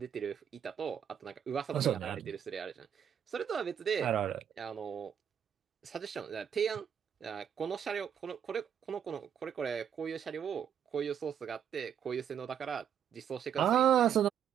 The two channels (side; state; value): left; quieter; 8.6 dB